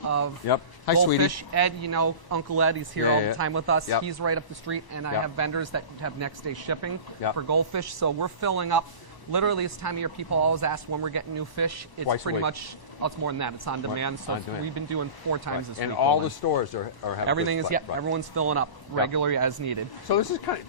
of Yep. Hi, goldfish. sweetie. Ed, Uncle Ed, he's here Yeah, all yeah. the time with us. Yep. He's right up the street, and I Yep. have vendors that have next day shipping Yep. for goldfish. So we're filling up. Literally, this time of year, people always ask when we're getting new fish. It's Twice a pretty week. much, it's more than that. It's on demand. So on demand. we've been doing 4 times this And week. all Golden. the stores are having Everything this is, fight, yeah, right. everyone's filling up regularly as needed. So this is kind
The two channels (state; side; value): late; right; 1.0 ms